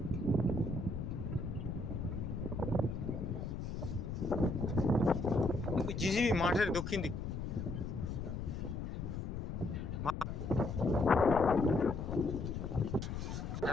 জিজিবি মাঠের দক্ষিণ দিক।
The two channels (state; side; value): noise; left; rumble, 4 dB below the sound